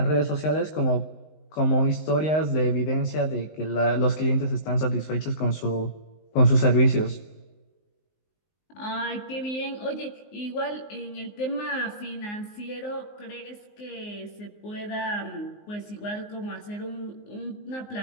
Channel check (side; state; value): right; late; 19 ms